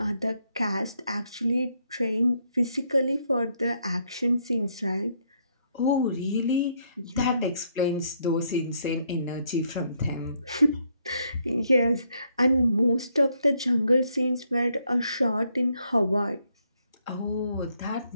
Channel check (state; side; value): inverted; both; correlation -0.73